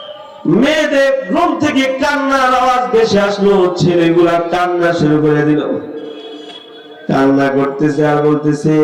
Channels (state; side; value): identical; both; correlation 1.00